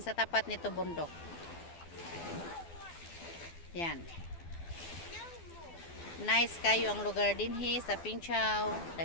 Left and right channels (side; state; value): right; late; 12 ms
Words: sa tapat nito bundok. Yan. Nice kayo ang lugar din sa Ping Chau.